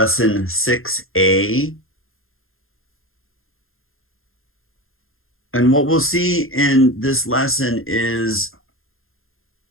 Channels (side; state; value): right; late; 0.61 ms